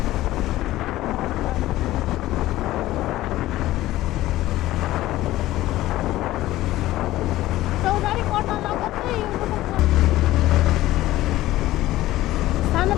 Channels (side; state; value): right; quieter; 15.8 dB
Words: चौरजारी पर्न लगत्तै सानो